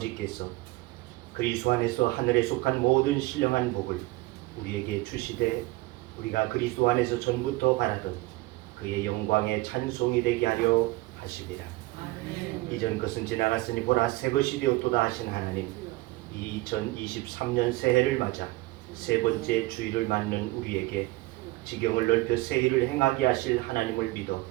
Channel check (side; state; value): left; quieter; 20.4 dB